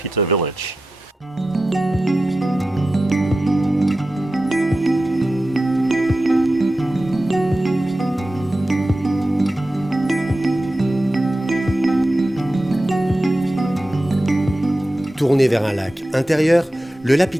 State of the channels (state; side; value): normal; both; correlation 0.92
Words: Village. Tourné vers un lac intérieur, le